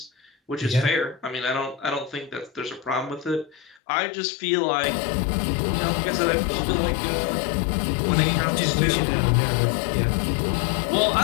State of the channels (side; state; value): right; drops out; at 3.8 s